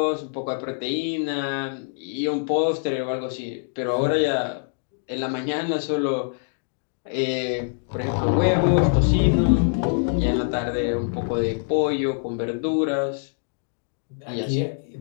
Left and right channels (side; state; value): right; silent; digital silence